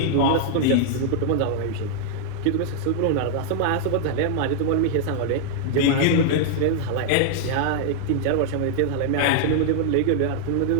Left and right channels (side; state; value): both; different; correlation -0.01